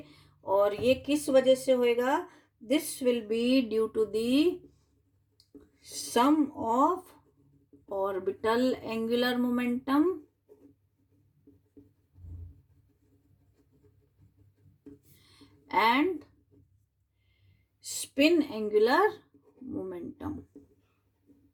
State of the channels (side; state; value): both; identical; correlation 1.00